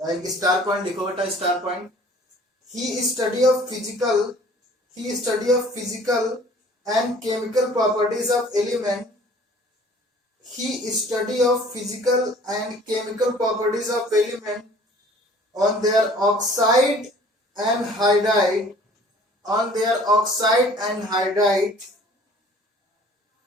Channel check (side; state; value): both; normal; correlation 0.51